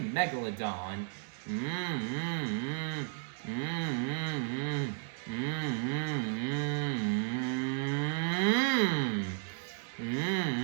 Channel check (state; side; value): silent; left; digital silence